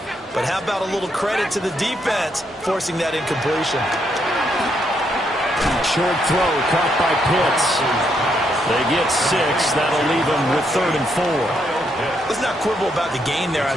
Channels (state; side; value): normal; both; correlation 0.76